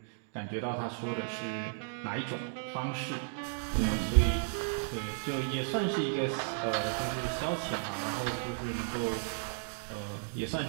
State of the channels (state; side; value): silent; left; digital silence